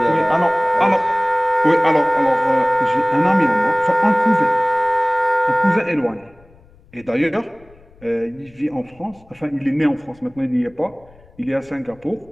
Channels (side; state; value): left; noise; rumble, 28 dB below the sound